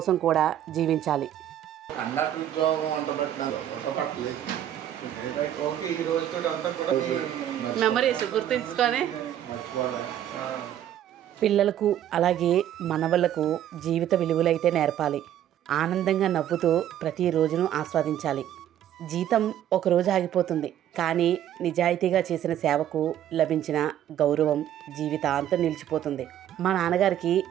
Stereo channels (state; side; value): quieter; left; 11.2 dB